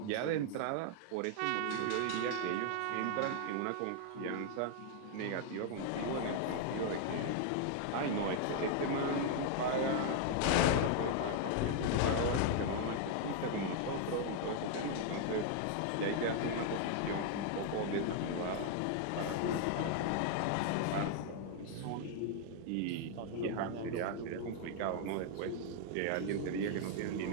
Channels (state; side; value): different; both; correlation 0.00